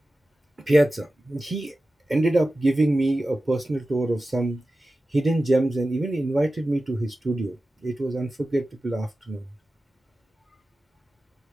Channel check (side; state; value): both; normal; correlation 0.95